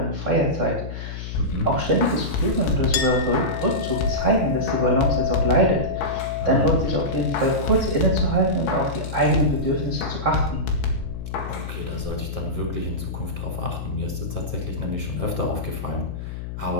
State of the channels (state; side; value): noise; left; hum, 7 dB below the sound